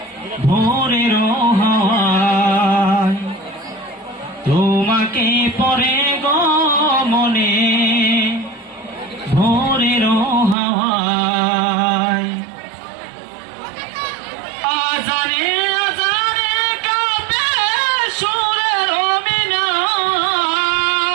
ভোরের হাওয়ায়। তোমাকে পরে গো মনে ভোরের হাওয়ায়। আজানে আজানে কাঁপে সুরের মিনার,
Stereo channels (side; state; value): left; drops out; at 10.6 s